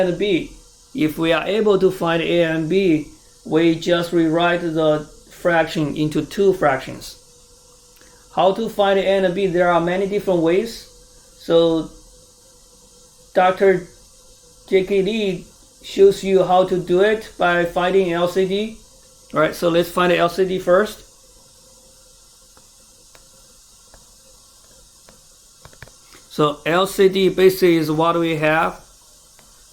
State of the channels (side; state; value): both; identical; correlation 1.00